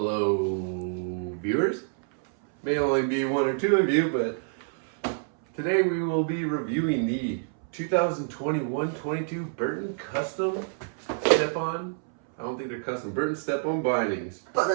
viewers. May only be one or two of you, but today we will be reviewing the 2021-22 Burton Custom Step-on. I don't think they're custom. Burton Step-on bindings.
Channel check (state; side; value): silent; left; 60 dB below the other